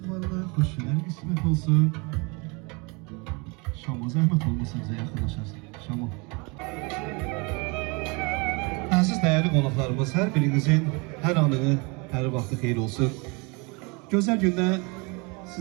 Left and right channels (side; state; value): left; quieter; 29.2 dB